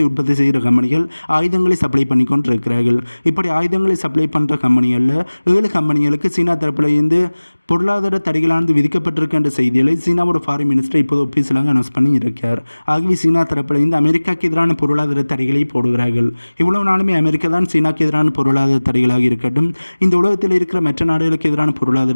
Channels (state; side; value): inverted; both; correlation -1.00